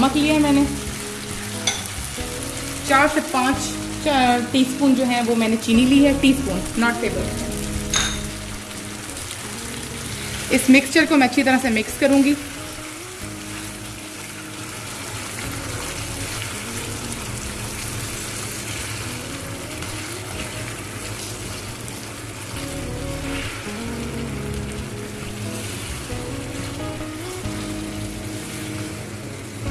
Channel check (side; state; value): both; identical; correlation 1.00